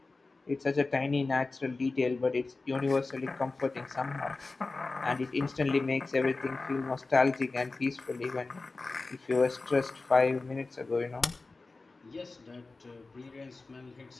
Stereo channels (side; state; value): right; quieter; 3.6 dB